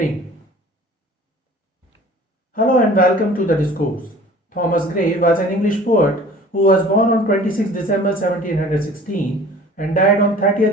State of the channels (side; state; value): both; normal; correlation 0.46